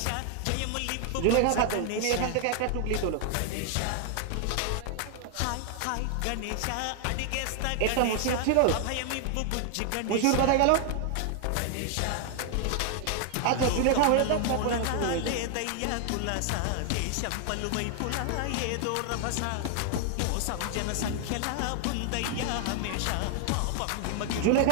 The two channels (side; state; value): both; different; correlation 0.00